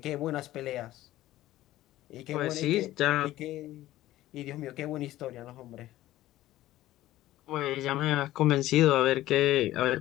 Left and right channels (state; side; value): quieter; right; 15.2 dB